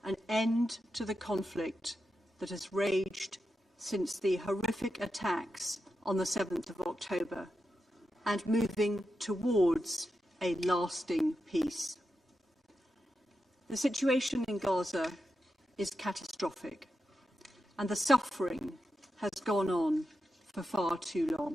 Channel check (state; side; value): normal; both; correlation 0.88